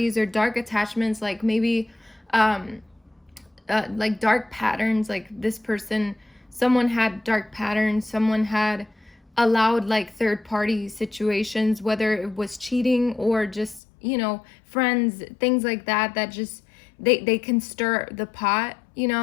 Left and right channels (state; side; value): drops out; right; at 13.8 s